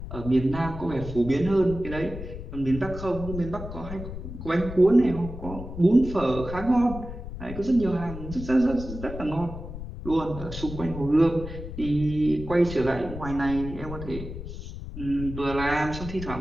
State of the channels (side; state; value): left; noise; rumble, 9 dB below the sound